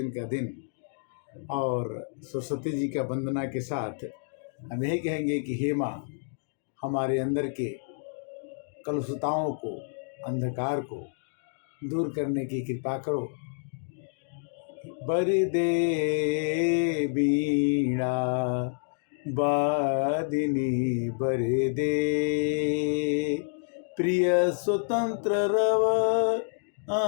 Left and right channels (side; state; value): right; silent; digital silence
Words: का दिन, और सरस्वती जी का वंदना के साथ हम यही कहेंगे कि हे माँ, हमारे अंदर के कलुषताओं को, अंधकार को दूर करने की कृपा करो। बरदे बीणा वादिनी बरदे, प्रिय स्वतंत्र रव